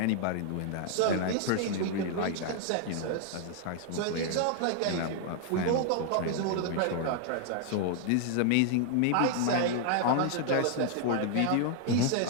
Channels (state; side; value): different; both; correlation 0.00